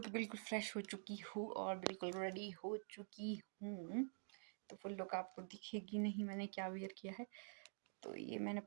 बिल्कुल फ्रेश हो चुकी हूँ और बिल्कुल रेडी हो चुकी हूँ। तो फुल लुक आपको दिखेगी नहीं मैंने क्या वेयर किया है। तो ये मैंने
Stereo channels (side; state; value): left; silent; digital silence